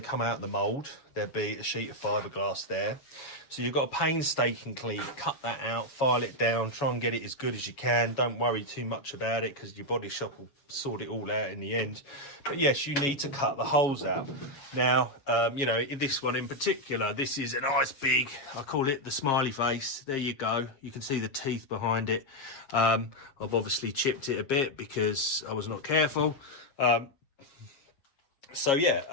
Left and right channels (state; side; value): late; right; 7.1 ms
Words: come out of the mold, there'll be a sheet of fiberglass there. So you've got to painstakingly cut that out, file it down, try and get it as good as you can. Don't worry too much about it, because your body shop will sort it all out in the end. But yes, you need to cut the holes out. Now, you know, in this one in particular, this is a nice big, I call it the smiley face. There you go. You can see the teeth behind it. I've obviously chipped it a bit because I was not careful. So